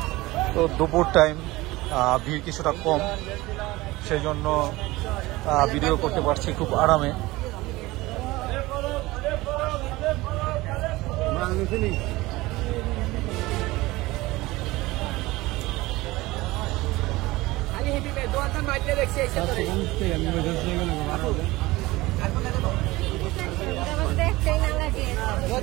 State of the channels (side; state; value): left; quieter; 19.9 dB